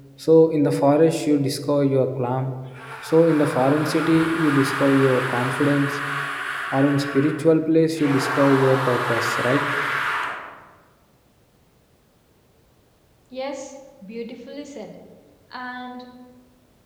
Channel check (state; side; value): identical; both; correlation 1.00